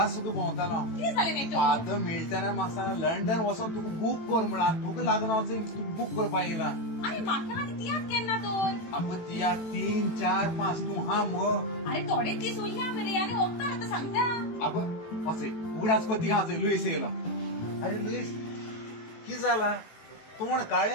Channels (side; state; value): right; late; 18 ms